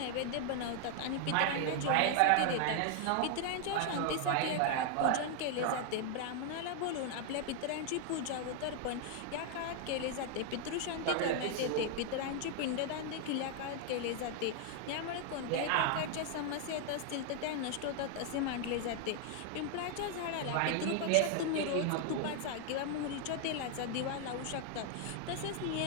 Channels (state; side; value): different; both; correlation 0.00